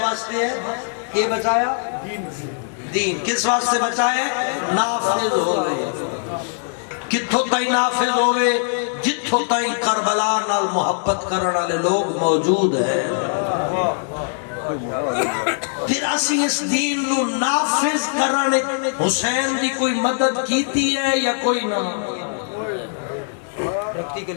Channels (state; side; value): silent; right; digital silence